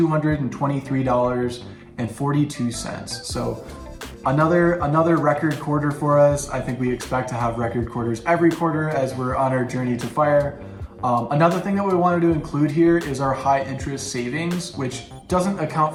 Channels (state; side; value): identical; both; correlation 1.00